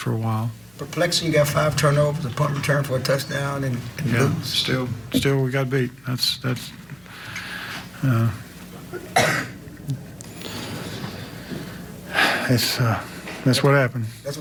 a while. Perplexing, you got 5 turnovers, a punt return for a touchdown, and lose. Still we got beat. That's what happened. That's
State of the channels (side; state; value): left; noise; hum, 30 dB below the sound